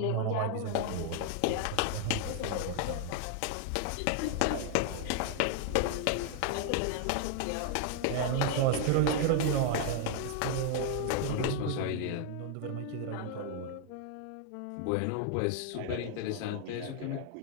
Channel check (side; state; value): both; different; correlation 0.00